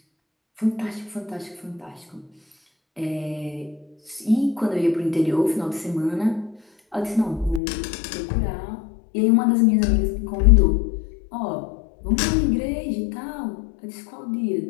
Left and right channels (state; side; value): drops out; right; at 7.6 s